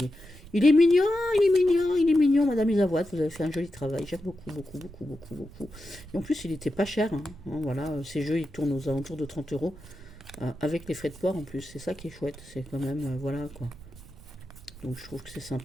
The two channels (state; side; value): noise; right; rumble, 19 dB below the sound